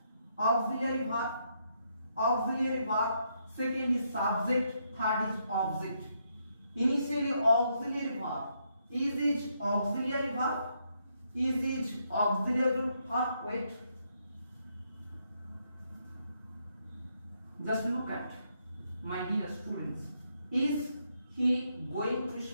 auxiliary verb, second is subject, third is object. Initially auxiliary verb. Is auxiliary verb. Is auxiliary verb. Wait. Just look at, my dear students. Is he going to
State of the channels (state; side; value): inverted; both; correlation -0.77